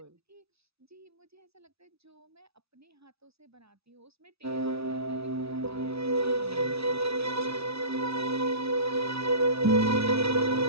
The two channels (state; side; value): late; left; 0.78 ms